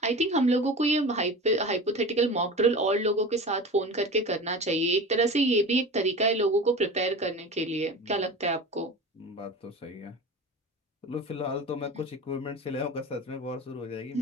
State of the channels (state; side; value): normal; both; correlation 0.33